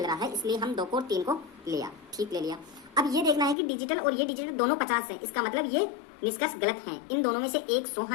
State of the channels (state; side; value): drops out; right; at 3.6 s